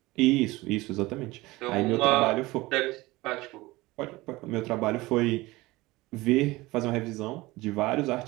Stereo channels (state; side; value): quieter; left; 20.4 dB